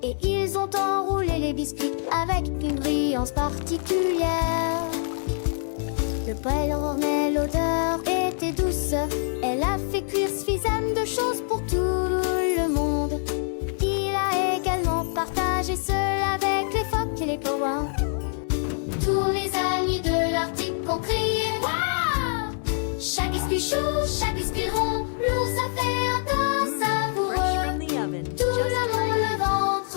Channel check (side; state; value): right; silent; 62 dB below the other